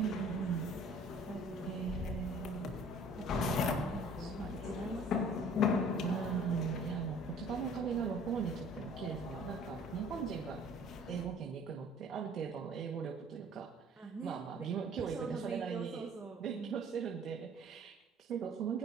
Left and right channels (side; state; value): both; normal; correlation 0.52